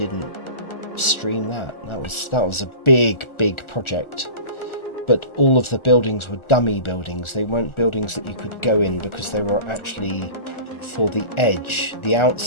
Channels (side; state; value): right; late; 1.4 ms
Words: stream that. That was a big project. But all of the buildings were dummy buildings. They weren't buildings that you could go in, because they were actually for the edge, the